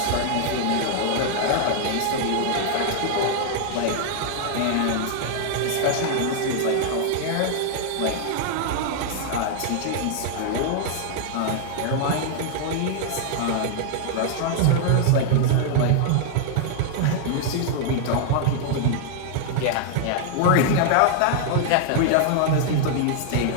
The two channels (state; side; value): different; both; correlation -0.01